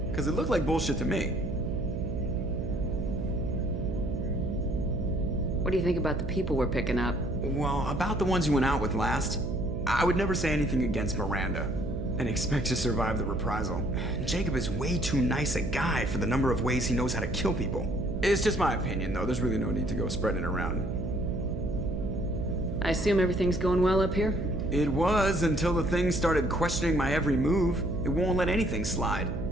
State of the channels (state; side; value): noise; right; hum, 5 dB below the sound